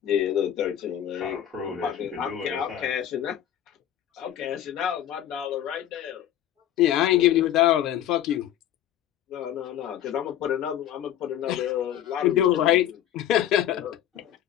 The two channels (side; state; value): right; quieter; 11.3 dB